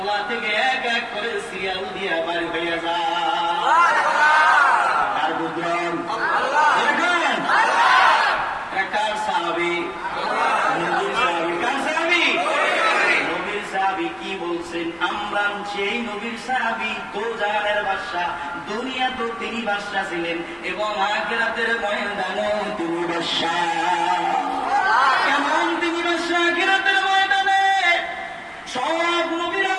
থেকে এক এক করে সিরিয়াল দিয়ে বাড়ি হইয়া যায়। আর বুঝলেন কার সাহাবী? নবীর সাহাবী। কার সাহাবী? নবীর সাহাবী। কি বলছেন? আমরা সেই নবীর সাহাবী, দোজাহানের বাদশা, দুনিয়া তো তিনি বাদশা ছিলেন এবং আখিরাতের ময়দানেও তিনি বাদশা। কেমন তিনি বাদশা? আখিরাতের ময়দানে সব নবীরা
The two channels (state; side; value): identical; both; correlation 1.00